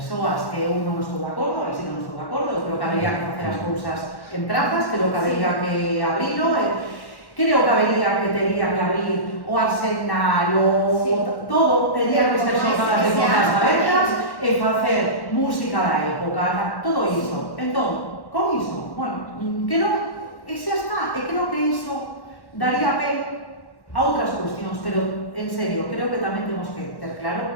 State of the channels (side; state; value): right; late; 1.1 ms